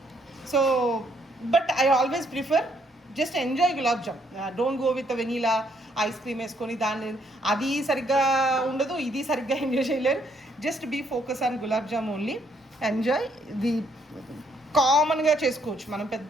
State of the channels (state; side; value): normal; both; correlation 0.70